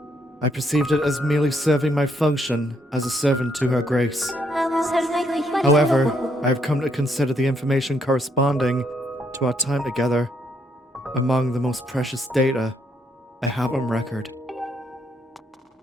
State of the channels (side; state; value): both; normal; correlation 0.73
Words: I perceived it as merely serving my function as a servant to her grace. However, I have come to consider the information corresponding to our time together among the most precious data I have on record.